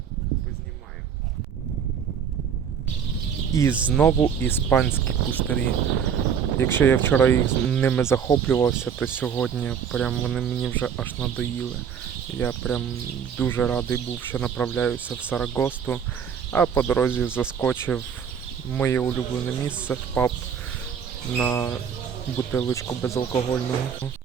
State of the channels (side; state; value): left; quieter; 7.5 dB